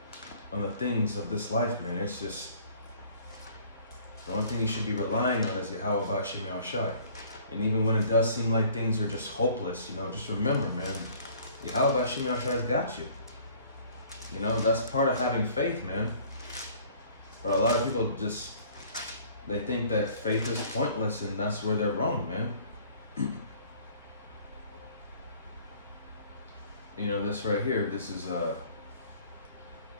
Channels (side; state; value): both; inverted; correlation -0.54